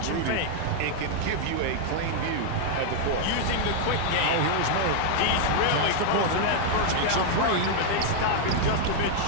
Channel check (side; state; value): both; different; correlation 0.00